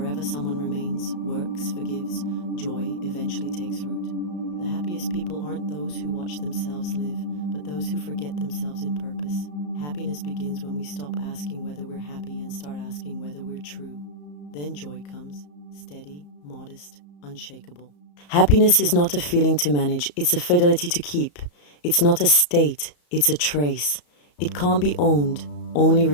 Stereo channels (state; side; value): late; right; 34 ms